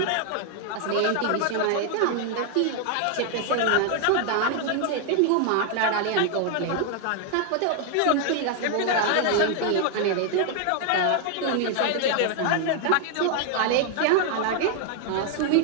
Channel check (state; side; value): different; both; correlation 0.00